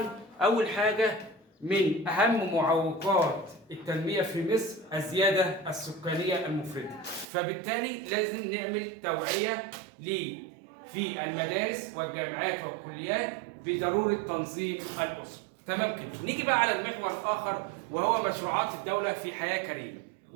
أول حاجة من أهم معوقات التنمية في مصر الزيادة السكانية المفرطة، فبالتالي لازم نعمل توعية في المدارس والجامعات والكليات بضرورة تنظيم الأسرة. تمام كده. نيجي بقى على المحور الآخر وهو مشروعات الدولة في حياة كريمة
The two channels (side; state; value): left; drops out; at 7.2 s